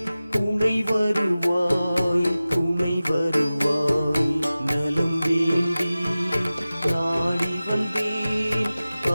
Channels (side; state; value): both; inverted; correlation -0.96